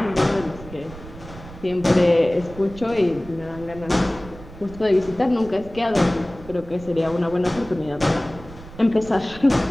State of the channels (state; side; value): noise; right; rumble, 16 dB below the sound